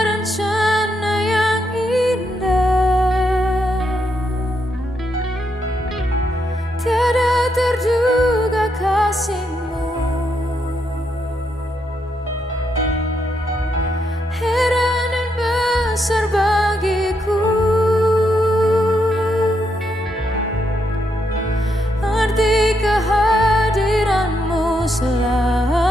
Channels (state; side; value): normal; both; correlation 0.79